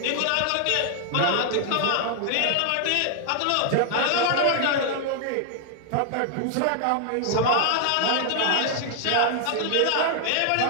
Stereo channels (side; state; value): both; different; correlation 0.00